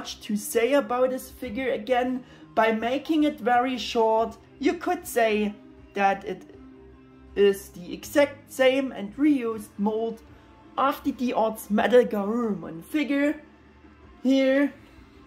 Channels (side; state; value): both; identical; correlation 1.00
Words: to say about this figure. Again, by making it very short, you could say that it is the exact same and reused mold of the D-Arts MetalGarurumon figure. Here,